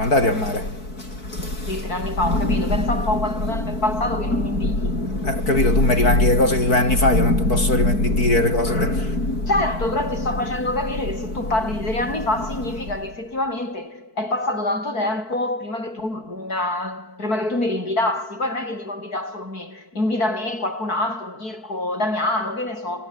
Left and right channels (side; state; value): right; late; 4.6 ms